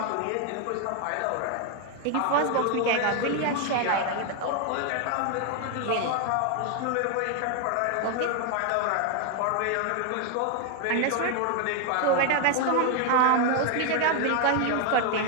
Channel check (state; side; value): different; both; correlation 0.00